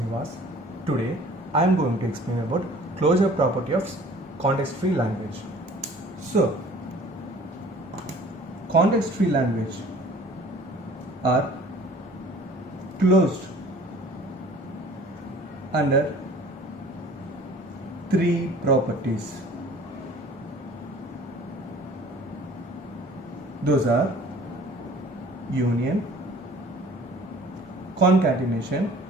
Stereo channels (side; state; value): both; normal; correlation 0.49